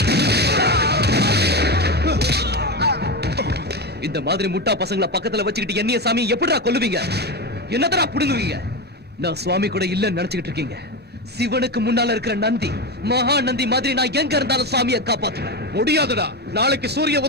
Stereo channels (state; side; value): normal; both; correlation 0.17